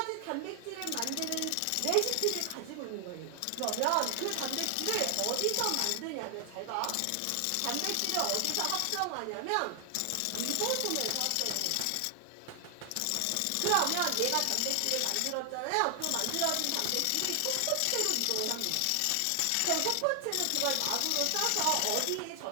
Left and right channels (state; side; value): different; both; correlation 0.00